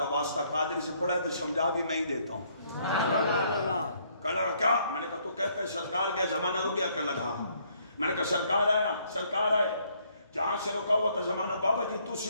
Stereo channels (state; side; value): inverted; both; correlation -0.68